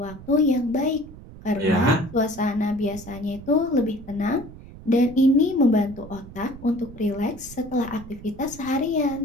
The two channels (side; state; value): right; noise; rumble, 16 dB below the sound